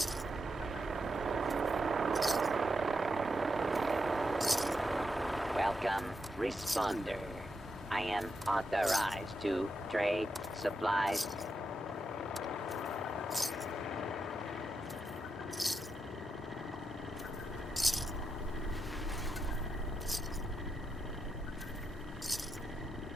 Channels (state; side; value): normal; both; correlation 0.85